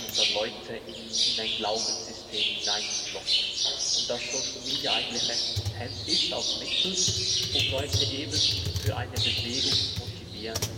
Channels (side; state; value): both; identical; correlation 1.00